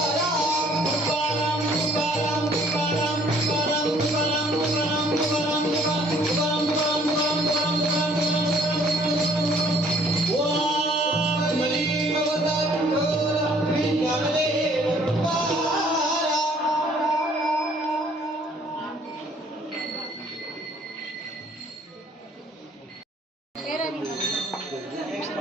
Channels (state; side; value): normal; both; correlation 0.59